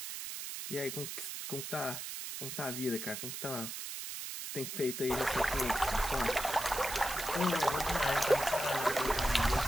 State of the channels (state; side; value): noise; right; hiss, 6 dB below the sound